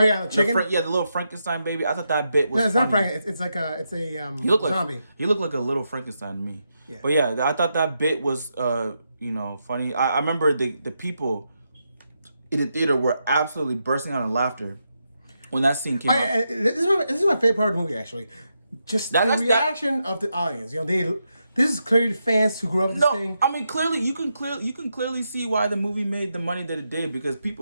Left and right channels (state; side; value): inverted; both; correlation -0.84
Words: chicken. The little Frankenstein baby. I thought that bit was. No, it's funny. not Frankenstein. It's like a he looked zombie. He looked like a little Frankenstein to me. Yeah. But yeah, I thought that bit was funny. I remember the people in the theater were absolutely bursting out in laughter when that scene came out. This is my favorite part of the movie, actually. Just the reaction of the audience. You know, this is clearly fans who grew up with this thing. I mean, clearly you can clearly see why the movie made the money that it did, because